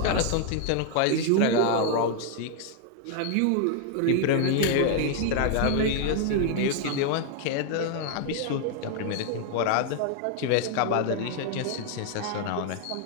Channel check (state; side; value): different; both; correlation 0.00